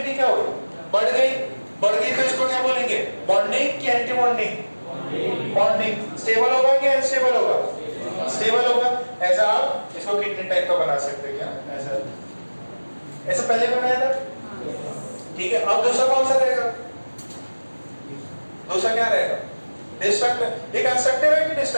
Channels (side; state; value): both; inverted; correlation -1.00